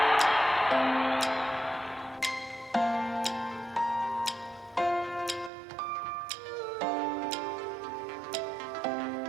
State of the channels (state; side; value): drops out; left; at 5.5 s